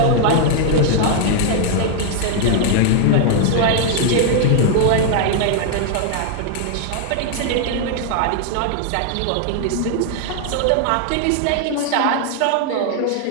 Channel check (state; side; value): different; both; correlation 0.00